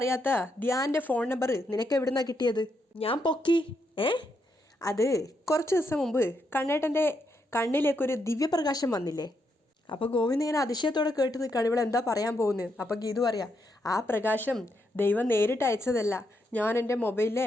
ധ്യാൻ്റെ ഫോൺ നമ്പർ നിനക്ക് എവിടുന്നാണ് കിട്ടിയത്? ഞാൻ പൊക്കി. അത് കുറച്ച് ദിവസം മുമ്പ് കണ്ണേട്ടൻ്റെ കണ്ണിലേക്കൊരു ദിവ്യപ്രകാശം വന്നില്ലേ, അപ്പോൾ ഗോവിന്ദ് ഇങ്ങനെ അതിശയത്തോടെ കേട്ട് നിൽക്കുകയാണ്, ഇവിടെ എന്താ പറയാൻ പോകുന്നത്. അപ്പോൾ ഗീതു പറയാം, ആ പ്രകാശം ദൈവം നേരിട്ട് അയച്ചതല്ല, ഞാൻ എൻ്റെ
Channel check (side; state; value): both; normal; correlation 0.80